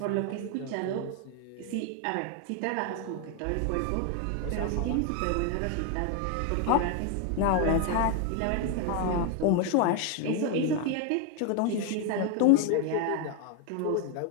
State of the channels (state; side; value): different; both; correlation 0.01